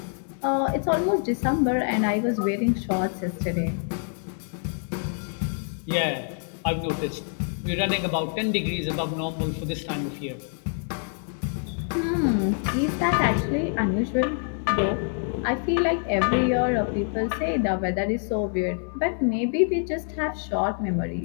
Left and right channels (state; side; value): silent; right; 60 dB below the other